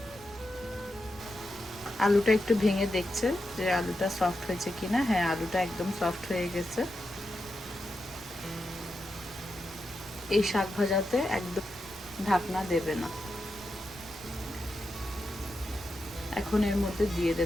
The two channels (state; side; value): noise; right; rumble, 20 dB below the sound